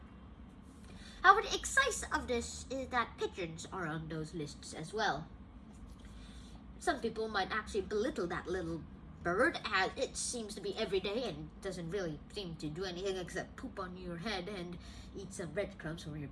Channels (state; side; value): identical; both; correlation 1.00